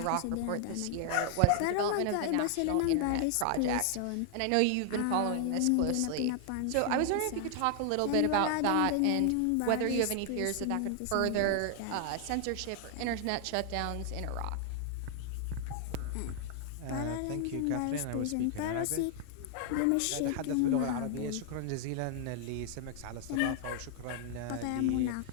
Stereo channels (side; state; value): both; different; correlation 0.00